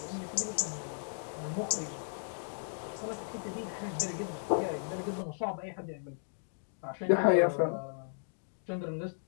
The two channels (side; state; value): right; silent; digital silence